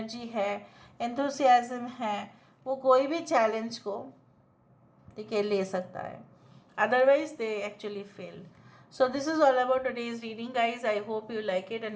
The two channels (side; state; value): both; identical; correlation 1.00